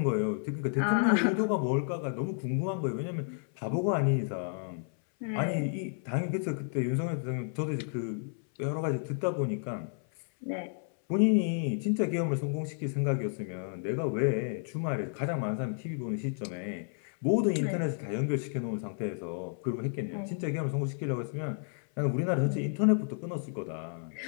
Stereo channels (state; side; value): silent; right; 57 dB below the other